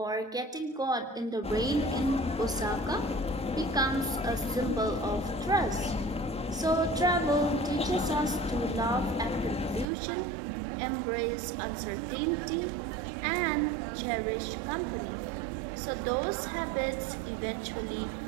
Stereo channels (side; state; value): left; drops out; at 9.9 s